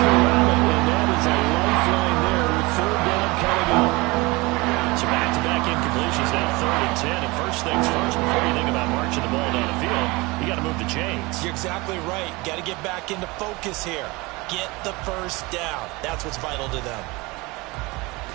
it, and that is a lifeline there with 3rd down coming up. So back-to-back incompletions, now 3rd and 10. And first things first, before you think about marching the ball down the field, you got to move the chains. You're exactly right. Got to get back into focus here. get the first down. That's what's vital to them.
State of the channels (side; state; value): left; quieter; 23.8 dB